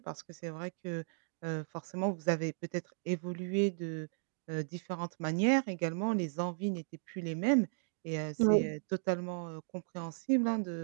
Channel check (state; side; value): silent; left; digital silence